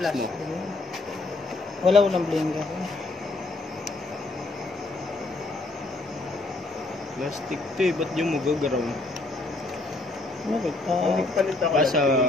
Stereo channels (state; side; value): quieter; right; 3.1 dB